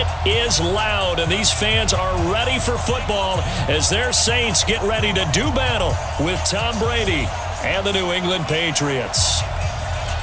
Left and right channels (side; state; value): both; identical; correlation 1.00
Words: is loud, and these fans are ready for football as their Saints get ready to do battle with Tom Brady and the New England Patriots.